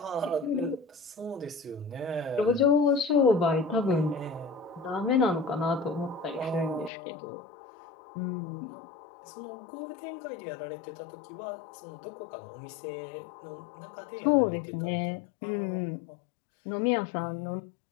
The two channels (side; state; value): right; drops out; at 6.9 s